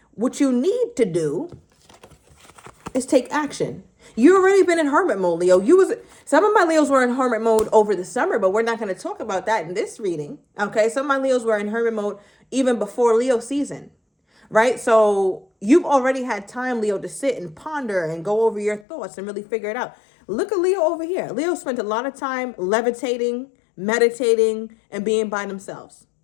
What you need to do is take action. You already been in hermit mode, Leo. Some of my Leos were in hermit mode over the summer, but we're not going to talk about that in this reading. Okay. Some of my Leos were in hermit mode even before Leo season, right? So you've already had time, Leo, to sit and ponder and go over your thoughts and really figure it out. Look at Leo over here. Leo spent a lot of time levitating, meditating, and being by themselves.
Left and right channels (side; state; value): right; drops out; at 18.9 s